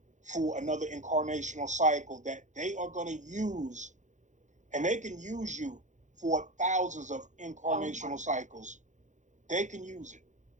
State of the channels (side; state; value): left; late; 0.35 ms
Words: for another incarnational cycle that they are going to use, and they can use you for thousands of Oh my incarnational God. cycles. They can use it,